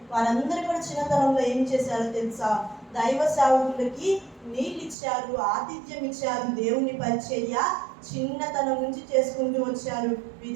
వారందరూ కూడా చిన్నతనంలో ఏం చేశారో తెలుసా? దైవ సేవకులకి నీళ్ళు ఇచ్చారు, ఆతిథ్యం ఇచ్చారు, దేవుని పరిచర్య చిన్నతనం నుంచి చేసుకుంటూ వచ్చారు,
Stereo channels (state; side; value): drops out; left; at 5.0 s